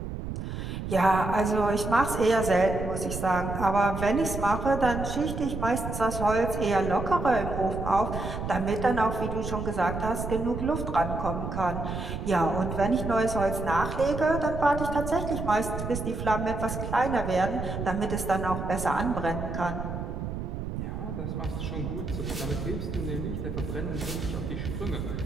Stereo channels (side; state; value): right; noise; rumble, 5 dB below the sound